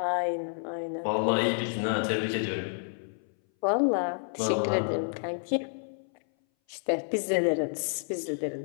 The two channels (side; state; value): right; silent; 58 dB below the other